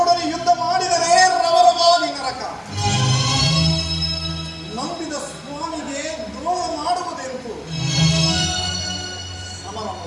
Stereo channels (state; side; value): identical; both; correlation 1.00